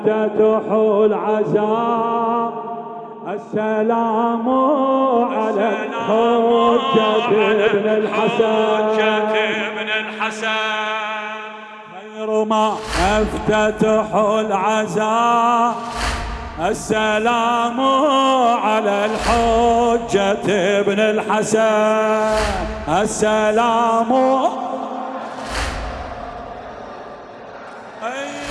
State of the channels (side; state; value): both; identical; correlation 1.00